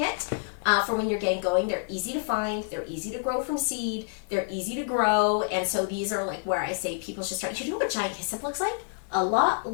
for when you're getting going. They're easy to find, they're easy to grow from seed, they're easy to grow, and so these are like where I say people should start. You know what giant hyssop looks like? A lot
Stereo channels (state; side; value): silent; right; 59 dB below the other